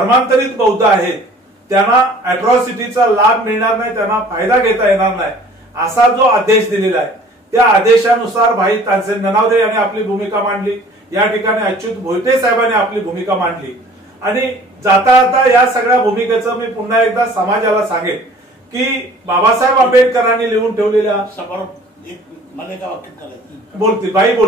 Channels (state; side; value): normal; both; correlation 0.50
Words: बौद्ध आहेत त्यांना अॅट्रॉसिटीचा लाभ मिळणार नाही, त्यांना फायदा घेता येणार नाही असा जो आदेश दिलेला आहे, त्या आदेशानुसार भाई तानसेन ननावदे यांनी आपली भूमिका मांडली, या ठिकाणी अच्युत भोईटे साहेबांनी आपली भूमिका मांडली. आणि जाता जाता या सगळ्या भूमिकेचं मी पुन्हा एकदा समाजाला सांगेन की बाबासाहेब आंबेडकरांनी लिहून ठेवलेल्या